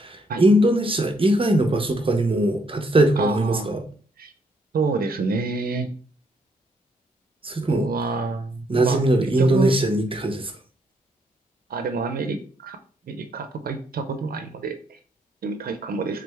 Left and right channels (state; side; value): normal; both; correlation 0.72